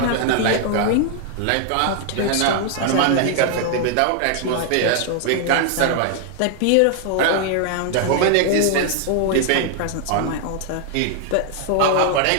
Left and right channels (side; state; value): both; different; correlation 0.00